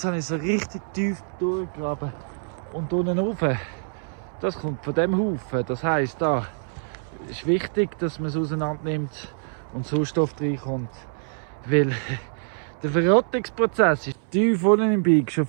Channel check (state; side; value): silent; left; 62 dB below the other